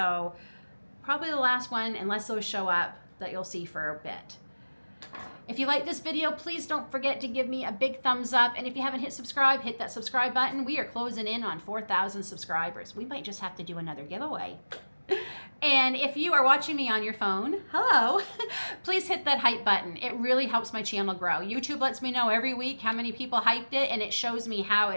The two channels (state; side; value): inverted; both; correlation -1.00